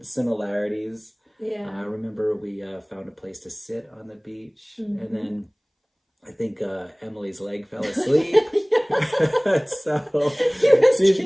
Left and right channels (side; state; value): both; identical; correlation 1.00